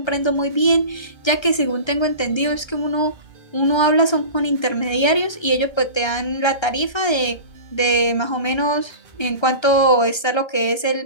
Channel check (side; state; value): right; late; 1.3 ms